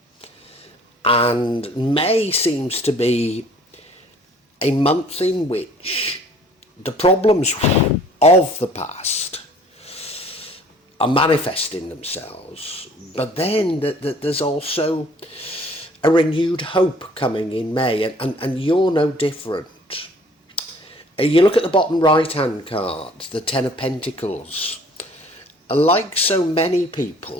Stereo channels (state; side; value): normal; both; correlation 0.54